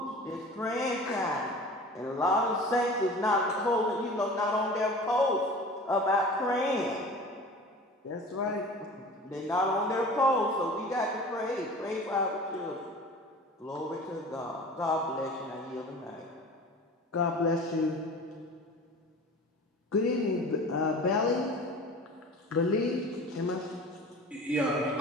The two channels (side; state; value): both; normal; correlation 0.39